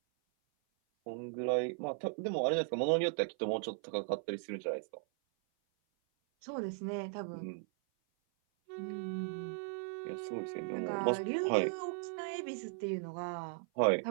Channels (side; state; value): left; silent; 53 dB below the other